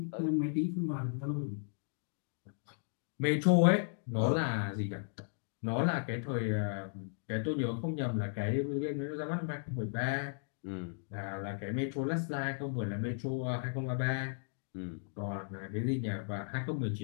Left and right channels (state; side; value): silent; right; digital silence